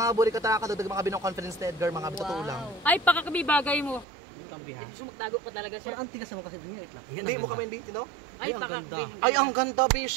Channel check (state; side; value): drops out; left; at 4.0 s